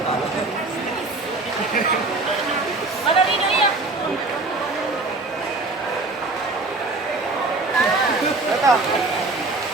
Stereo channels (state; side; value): quieter; left; 3.4 dB